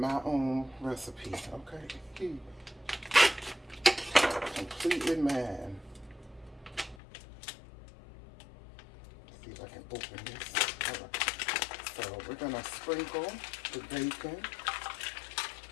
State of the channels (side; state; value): right; drops out; at 7.0 s